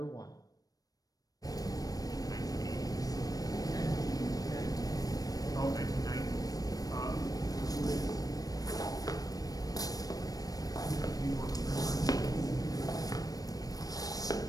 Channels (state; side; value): late; right; 0.18 ms